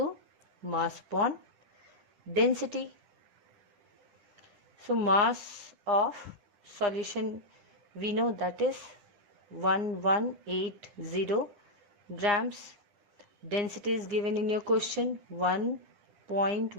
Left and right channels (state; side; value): late; left; 9.8 ms